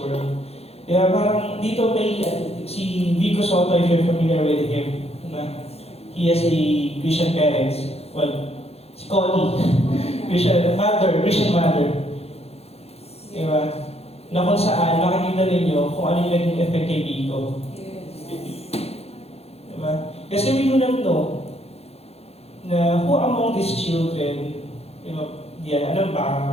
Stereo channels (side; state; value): right; late; 0.29 ms